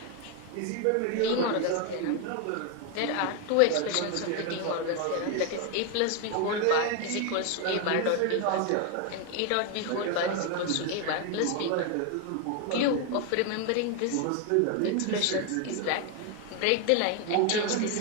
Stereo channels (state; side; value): different; both; correlation 0.01